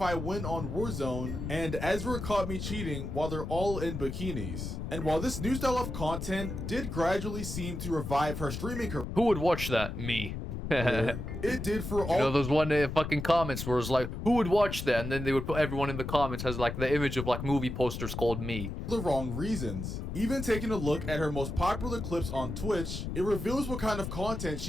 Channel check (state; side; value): noise; left; rumble, 5 dB below the sound